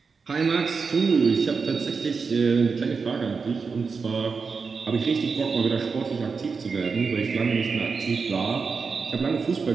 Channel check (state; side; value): quieter; left; 5.0 dB